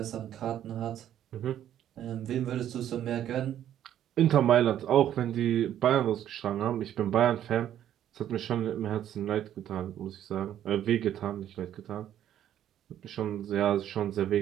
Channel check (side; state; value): left; quieter; 11.0 dB